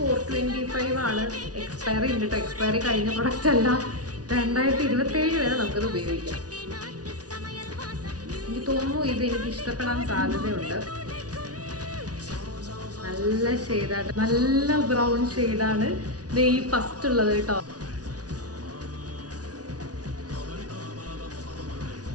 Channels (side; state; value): left; late; 0.68 ms